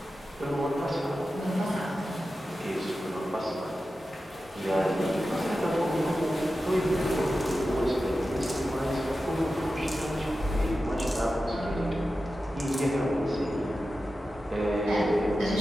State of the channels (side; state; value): both; normal; correlation 0.93